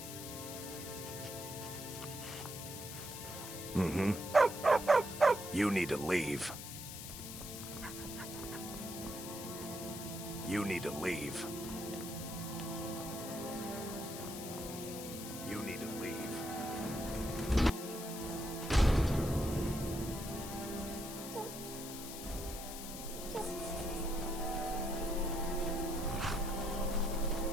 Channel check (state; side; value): noise; left; hiss, 9 dB below the sound